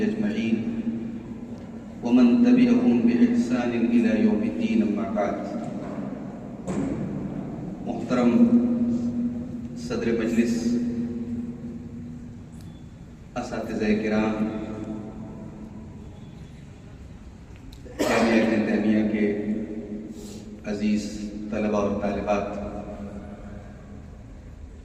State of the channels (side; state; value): both; identical; correlation 1.00